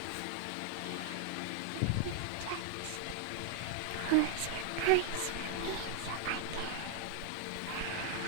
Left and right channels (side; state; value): both; different; correlation 0.00